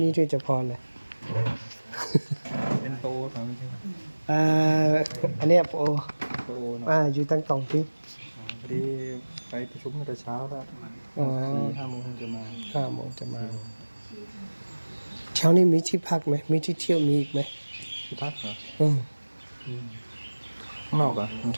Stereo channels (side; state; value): both; inverted; correlation -1.00